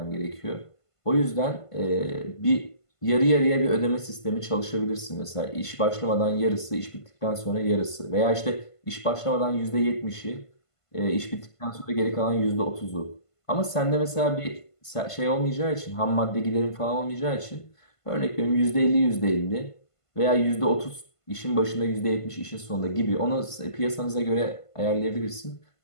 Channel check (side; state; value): right; late; 1.5 ms